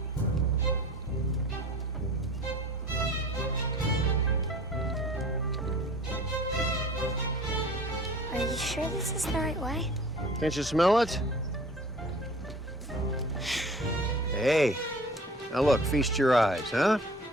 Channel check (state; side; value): normal; both; correlation 0.45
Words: Are you sure this is the right way? Can't you smell it? Hey, now look, feast your eyes, huh?